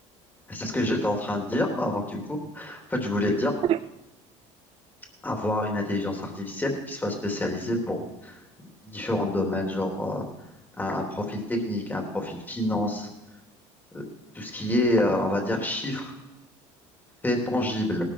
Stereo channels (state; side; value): normal; both; correlation 0.58